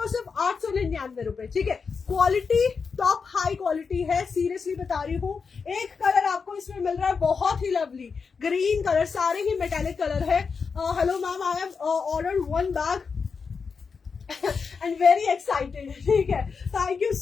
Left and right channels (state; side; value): quieter; right; 5.4 dB